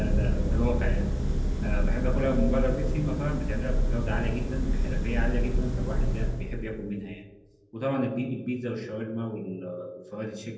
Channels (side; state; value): both; identical; correlation 1.00